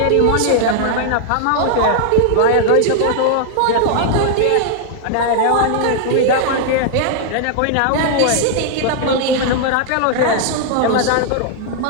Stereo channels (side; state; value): both; different; correlation 0.00